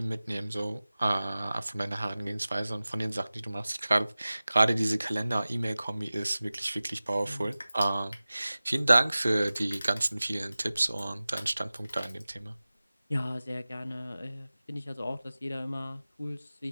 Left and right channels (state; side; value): inverted; both; correlation -0.97